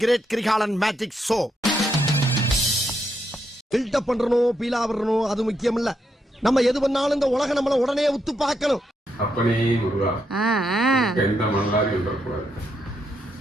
great Kirikalan magic show. Buildup பண்றணும், பீலா வரணும், அது முக்கியம் இல்ல. நம்ம எது பண்ணாலும் இந்த உலக நம்மள உடனே உத்து பார்க்கணும். அப்பனே முருகா, எந்த மணலாரி வந்துடக்கூடாது.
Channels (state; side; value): normal; both; correlation 0.79